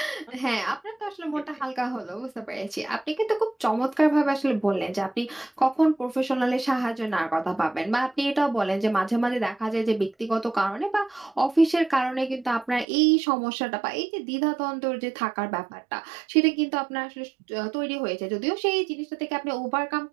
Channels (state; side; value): drops out; left; at 12.9 s